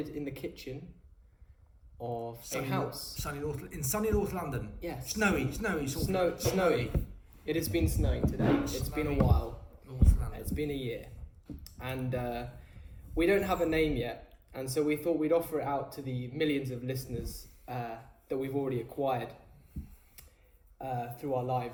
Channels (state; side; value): identical; both; correlation 1.00